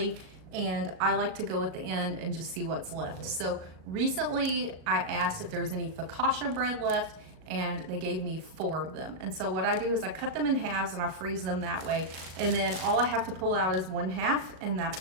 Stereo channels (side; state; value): left; late; 37 ms